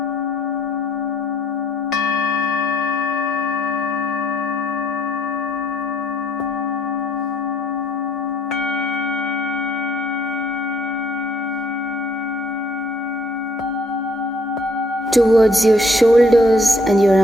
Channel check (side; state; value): both; normal; correlation 0.65